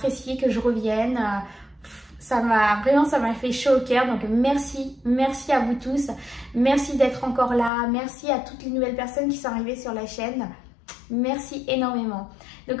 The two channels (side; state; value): right; drops out; at 7.7 s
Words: que je revienne. Ça m'a fait chaud au cœur, donc merci à vous tous, merci d'être encore là, merci à toutes les nouvelles personnes qui sont arrivées sur la chaîne, merci énormément.